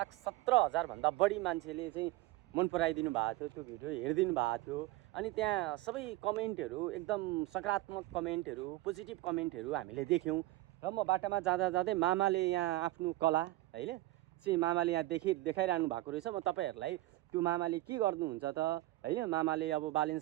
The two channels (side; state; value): left; quieter; 18.1 dB